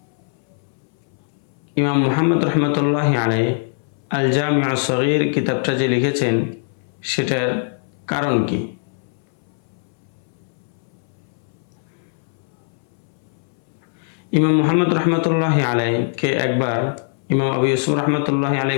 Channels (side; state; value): right; silent; 63 dB below the other